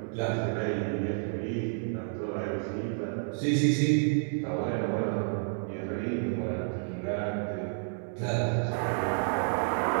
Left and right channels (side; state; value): left; silent; 58 dB below the other